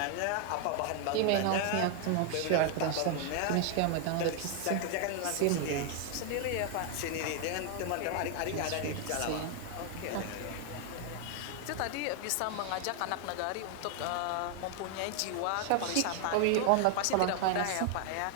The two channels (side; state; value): both; different; correlation 0.00